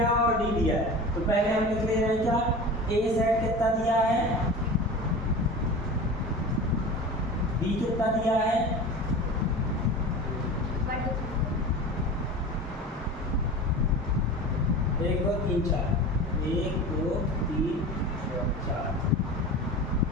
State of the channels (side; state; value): both; normal; correlation 0.33